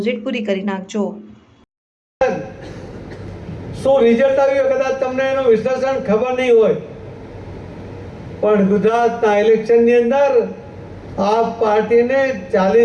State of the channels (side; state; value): both; identical; correlation 1.00